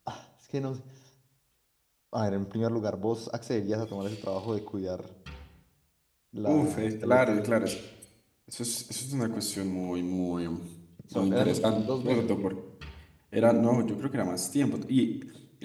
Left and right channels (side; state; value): both; identical; correlation 1.00